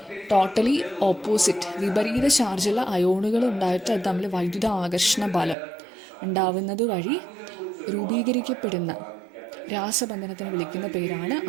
ടോട്ടലി ഓപ്പോസിറ്റ് വിപരീത ചാർജുള്ള അയോണുകൾ ഉണ്ടായിട്ട് അത് തമ്മിൽ വൈദ്യുത ആകർഷണ ബലം ഉണ്ടാവുന്നത് വഴി രൂപീകരിക്കപ്പെടുന്ന രാസബന്ധനത്തിന് വിളിക്കുന്ന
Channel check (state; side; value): drops out; left; at 5.6 s